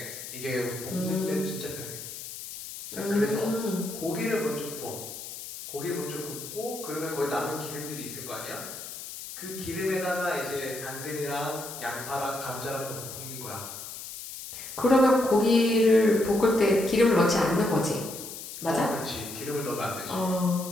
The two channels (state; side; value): noise; left; hiss, 10 dB below the sound